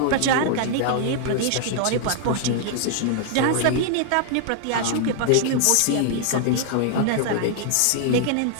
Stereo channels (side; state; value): both; different; correlation 0.00